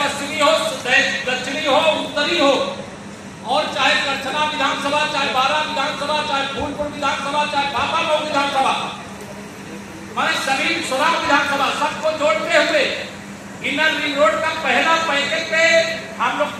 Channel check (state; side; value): identical; both; correlation 1.00